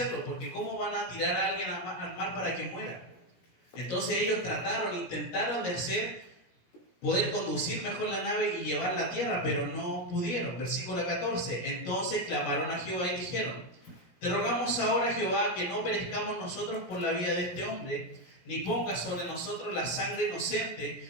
porque ¿cómo van a tirar a alguien al mar para que muera? Entonces ellos intentaron de poder conducir mejor la nave y llevarla a tierra, pero no pudieron. Versículo 14. Entonces clamaron a Jehová y dijeron, te rogamos ahora, Jehová, que no perezcamos nosotros por la vida de este hombre, ni pongas sobre nosotros la sangre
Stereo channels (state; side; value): late; right; 17 ms